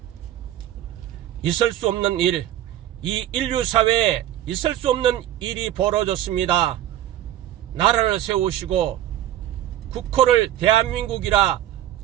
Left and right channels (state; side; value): quieter; left; 12.5 dB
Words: 있을 수 없는 일, 이 인류사회에 있을 수 없는 일이 벌어졌습니다. 나라를 세우시고 국호를 대한민국이라